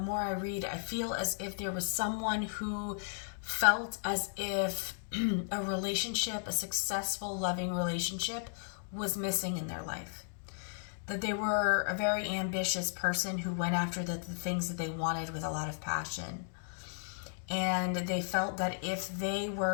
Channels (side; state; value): right; silent; digital silence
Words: I read, I feel as if there was someone who felt as if a relationship, a successful, loving relationship, was missing in their life. That they were a very ambitious person who went after the things that they wanted with a lot of passion. And they felt that if they